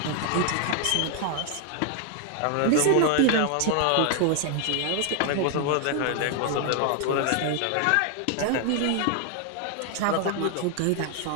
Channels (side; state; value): both; different; correlation 0.00